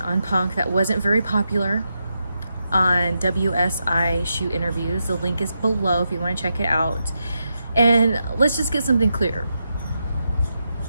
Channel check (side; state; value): both; inverted; correlation -0.85